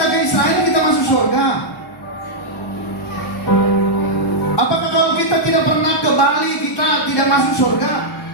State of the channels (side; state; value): both; normal; correlation -0.06